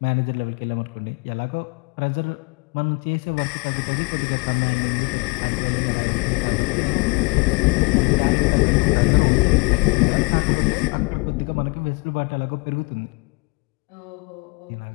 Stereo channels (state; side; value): quieter; right; 29.2 dB